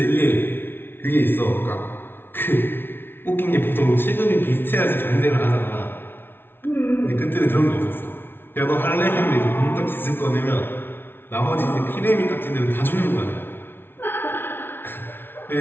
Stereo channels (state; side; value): late; right; 0.11 ms